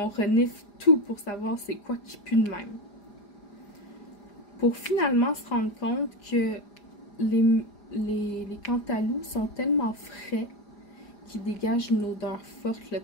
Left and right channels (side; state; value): right; late; 5.0 ms